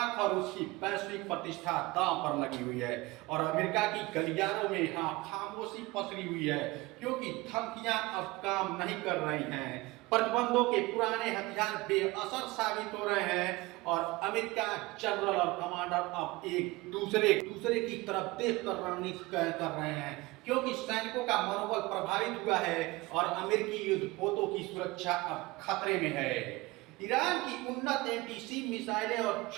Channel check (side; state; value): left; quieter; 21.6 dB